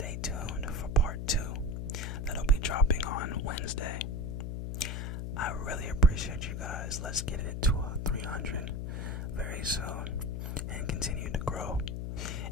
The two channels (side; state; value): left; noise; hum, 3 dB below the sound